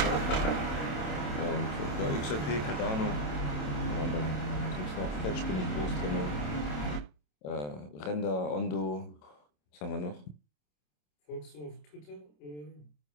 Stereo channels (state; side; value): late; right; 27 ms